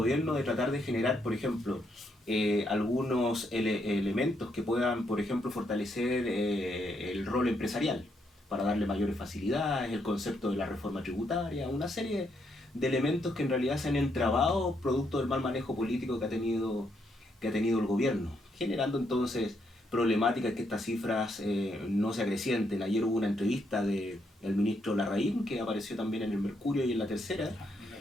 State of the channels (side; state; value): both; normal; correlation 0.76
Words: de tratar de generar, por ejemplo, algunos elementos que puedan, por ejemplo, fortalecer el rol empresarial para darle mayores facilidades, el concepto de la reforma tributaria, una serie de elementos que en realidad se han entrabado producto del mal manejo político que ha tenido el gobierno, generando entonces problemáticas que estas cifras no se acrecienten. Ayer hubo una entrevista del ministro Larraín que apareció también en el Mercurio y en La Tercera,